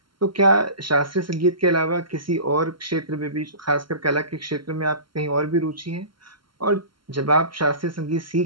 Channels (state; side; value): late; left; 0.73 ms